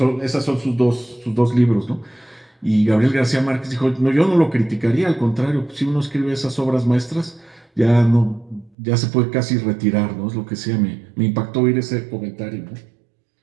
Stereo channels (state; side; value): drops out; left; at 8.7 s